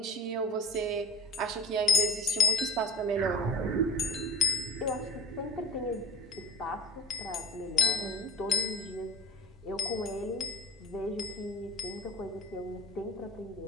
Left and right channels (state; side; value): normal; both; correlation 0.36